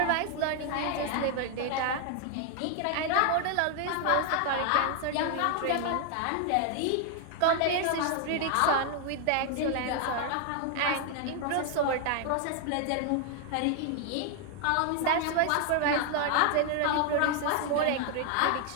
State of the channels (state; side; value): different; both; correlation 0.00